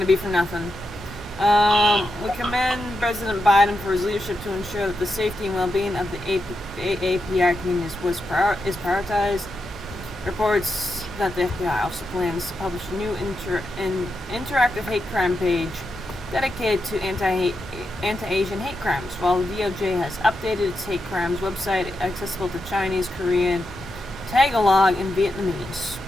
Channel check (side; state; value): both; normal; correlation 0.86